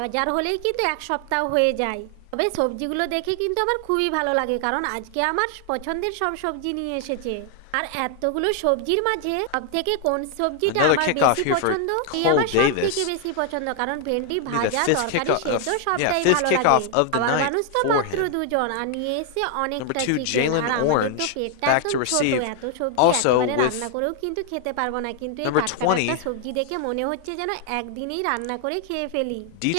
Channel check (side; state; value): both; different; correlation 0.00